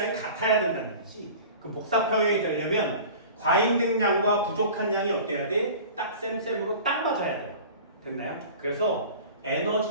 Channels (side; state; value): both; inverted; correlation -0.40